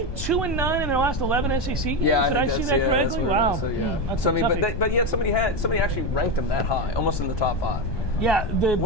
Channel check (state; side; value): late; right; 1.2 ms